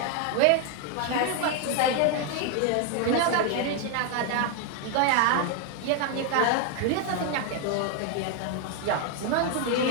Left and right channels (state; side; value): different; both; correlation 0.01